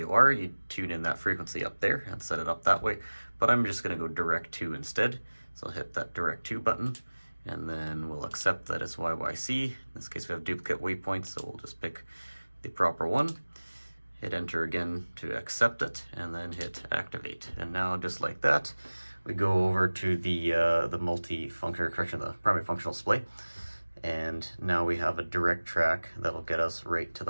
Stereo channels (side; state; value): both; inverted; correlation -1.00